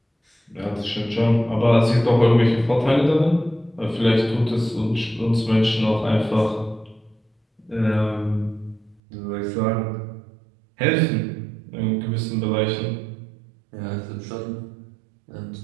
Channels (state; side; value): drops out; left; at 9.0 s